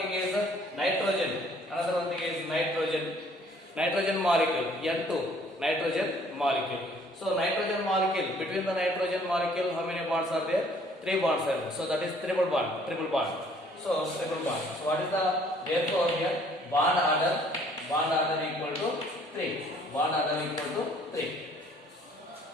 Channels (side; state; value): both; normal; correlation 0.59